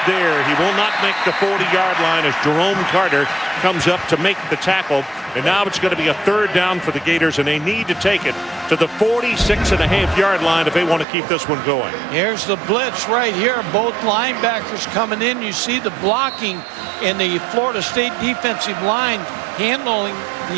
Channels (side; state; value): left; drops out; at 11.1 s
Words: there. He will not make the 40-yard line as Jerome Carter comes up to make the tackle. And now it's going to be a third down for the Gators, and they need to take it to the 46.5-yard line if they want to keep this one going. Here's the blitz right here. Both linebackers coming in. You see the blocking in the Florida State defensive line handling